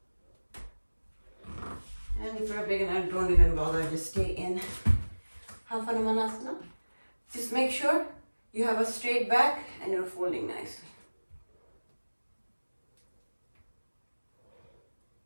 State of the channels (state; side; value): inverted; both; correlation -1.00